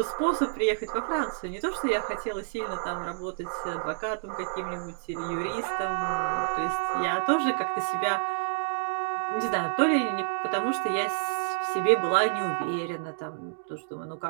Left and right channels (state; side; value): silent; left; digital silence